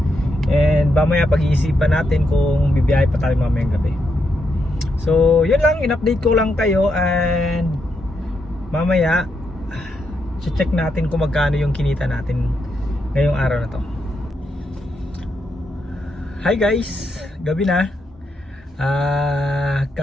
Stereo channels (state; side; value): normal; both; correlation 0.81